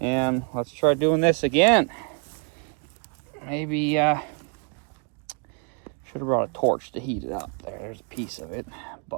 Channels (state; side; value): quieter; left; 38.7 dB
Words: let's try doing this again. Maybe should have brought a torch to heat it up. There's a piece of it,